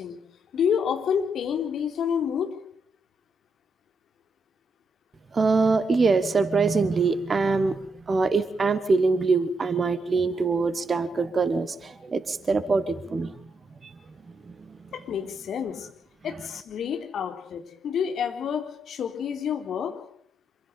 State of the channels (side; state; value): both; normal; correlation 0.80